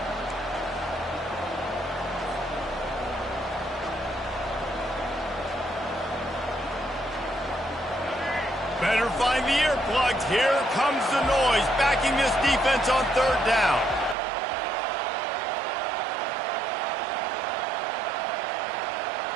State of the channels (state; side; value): drops out; left; at 14.2 s